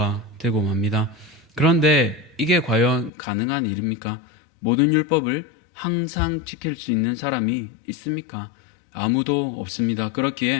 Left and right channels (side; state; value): right; drops out; at 3.1 s